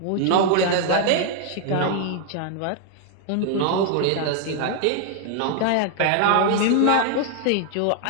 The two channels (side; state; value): both; different; correlation 0.00